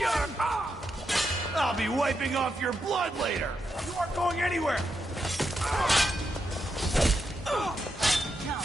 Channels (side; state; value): both; normal; correlation 0.84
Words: I'll be wiping off your blood later! You aren't going anywhere!